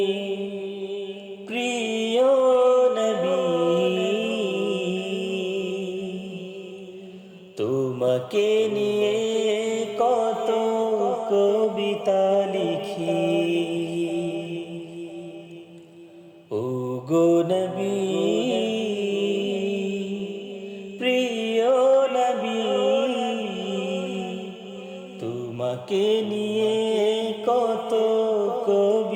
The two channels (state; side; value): identical; both; correlation 1.00